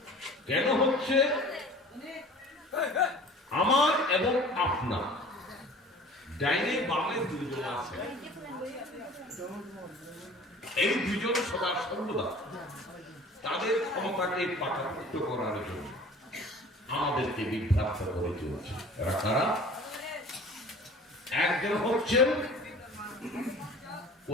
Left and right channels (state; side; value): normal; both; correlation 0.45